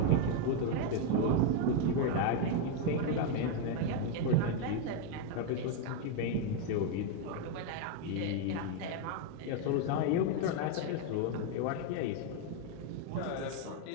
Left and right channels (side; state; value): both; different; correlation 0.01